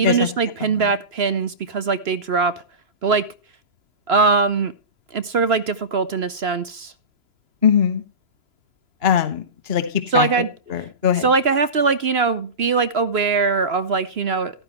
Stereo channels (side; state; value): left; late; 3.0 ms